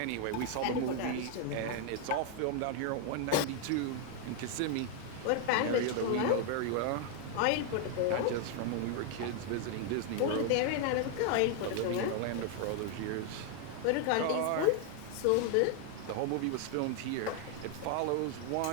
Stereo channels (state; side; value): different; both; correlation 0.00